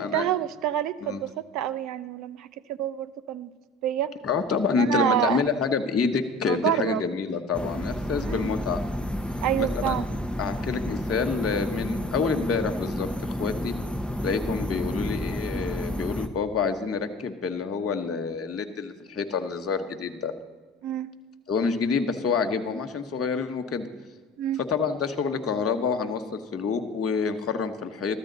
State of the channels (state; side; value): normal; both; correlation 0.42